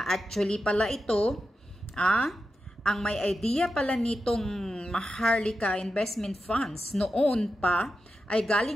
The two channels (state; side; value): normal; both; correlation 0.89